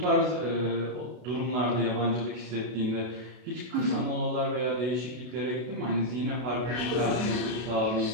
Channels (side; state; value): left; late; 32 ms